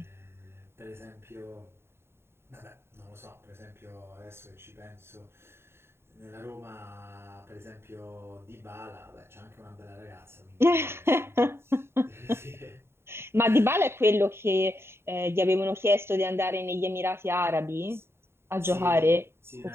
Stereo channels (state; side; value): late; left; 0.12 ms